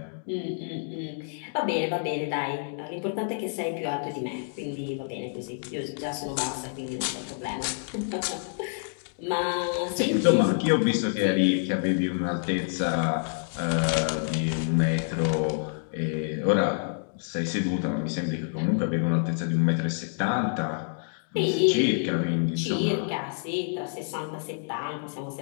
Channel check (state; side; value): silent; right; digital silence